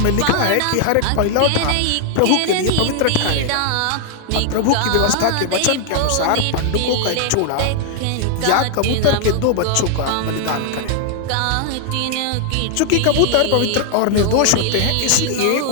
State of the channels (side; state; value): both; different; correlation 0.00